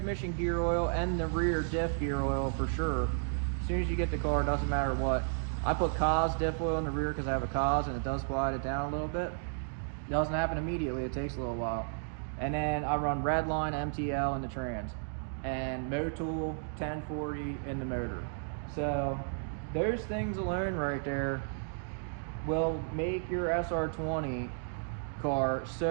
gear oil and the rear diff gear oil for sure. As soon as you get the car, it doesn't matter what. I put Cos diff oil in the rear because I have a Cos and it does quiet it down a little bit. It doesn't happen immediately, it takes a little while. And then I run Redline MTL in the trans and Motul 1040 in the motor. So those things alone right there will make your SR20 car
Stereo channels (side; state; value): left; silent; digital silence